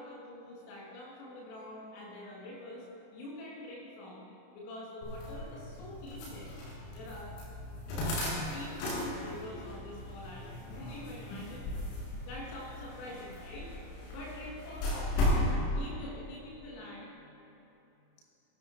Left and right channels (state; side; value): late; right; 32 ms